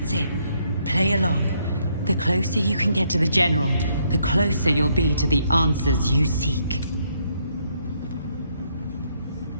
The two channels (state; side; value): inverted; both; correlation -0.72